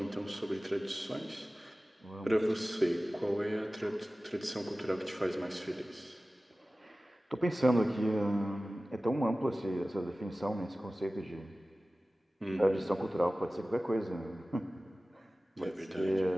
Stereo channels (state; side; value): normal; both; correlation 0.97